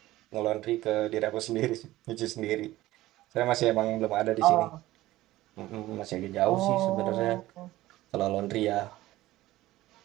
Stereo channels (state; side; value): quieter; left; 16.6 dB